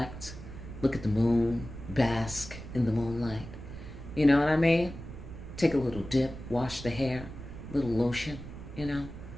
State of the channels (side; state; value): right; noise; rumble, 12 dB below the sound